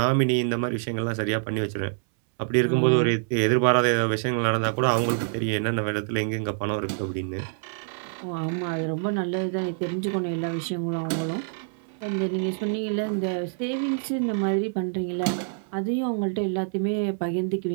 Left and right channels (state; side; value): silent; left; 61 dB below the other